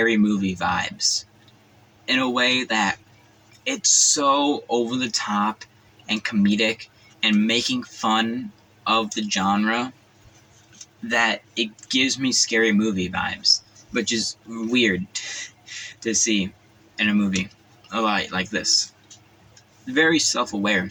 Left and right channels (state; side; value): identical; both; correlation 1.00